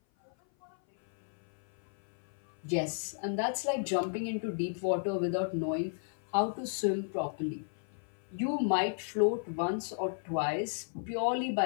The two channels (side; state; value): right; silent; 55 dB below the other